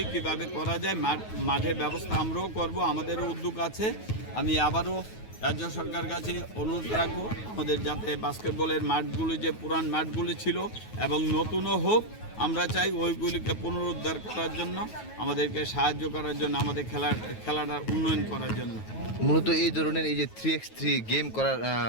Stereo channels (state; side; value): late; right; 9.3 ms